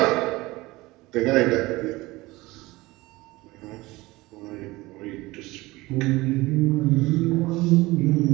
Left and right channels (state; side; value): quieter; left; 20.5 dB